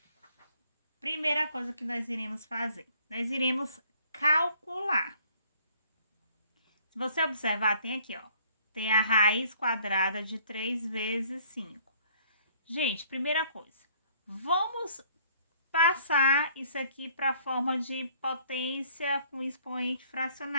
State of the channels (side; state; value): both; inverted; correlation -0.60